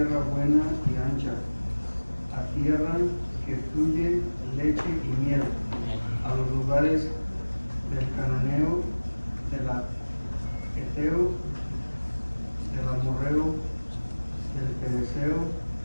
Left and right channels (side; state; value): both; inverted; correlation -1.00